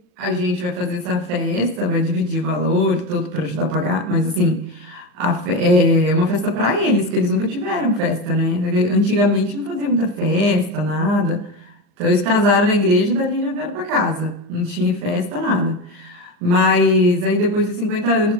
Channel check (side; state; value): left; late; 39 ms